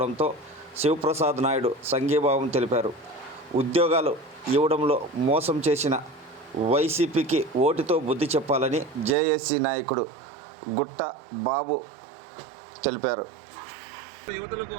శివప్రసాద్ నాయుడు సంఘీభావం తెలిపారు. ఉద్యోగాలు ఇవ్వడంలో మోసం చేసిన వైసీపీకి ఓటుతో బుద్ధి చెప్పాలని జేఏసీ నాయకుడు గుట్ట బాబు తెలిపారు. యువతులకు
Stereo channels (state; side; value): drops out; left; at 9.2 s